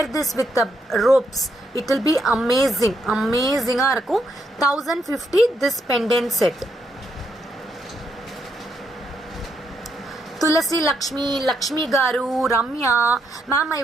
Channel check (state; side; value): normal; both; correlation 0.78